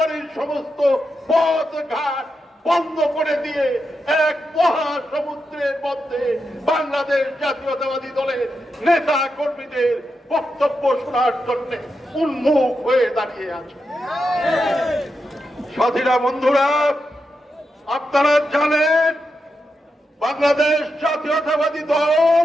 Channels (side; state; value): both; normal; correlation 0.86